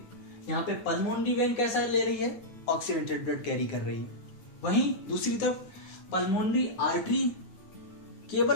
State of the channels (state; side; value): late; right; 9.4 ms